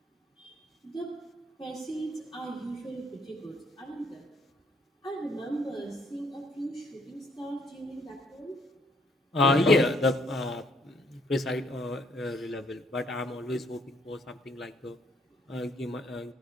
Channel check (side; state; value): both; normal; correlation 0.67